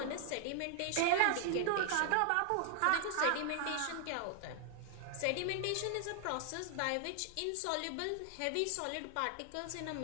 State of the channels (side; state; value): both; different; correlation 0.00